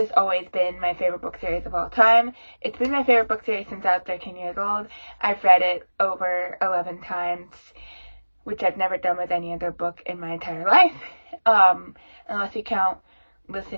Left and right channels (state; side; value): inverted; both; correlation -1.00